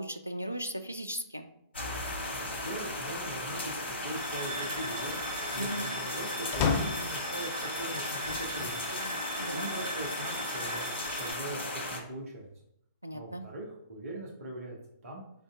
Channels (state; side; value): inverted; both; correlation -0.36